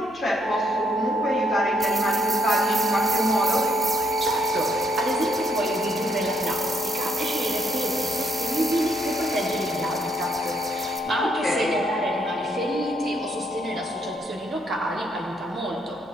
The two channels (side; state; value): left; noise; hum, 28 dB below the sound